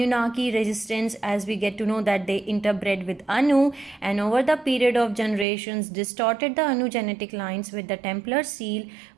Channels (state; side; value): drops out; left; at 5.5 s